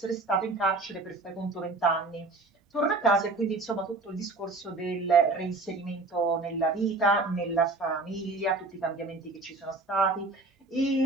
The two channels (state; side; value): quieter; left; 3.3 dB